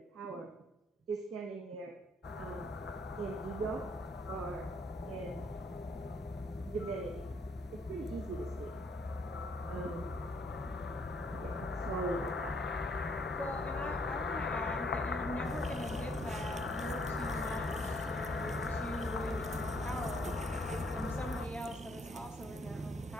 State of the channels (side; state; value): both; normal; correlation 0.67